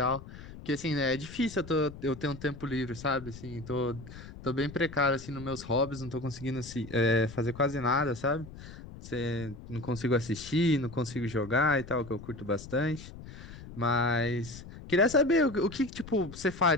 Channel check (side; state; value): left; noise; rumble, 14 dB below the sound